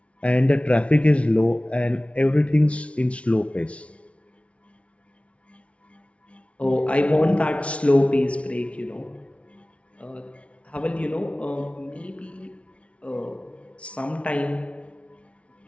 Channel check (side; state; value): right; late; 0.062 ms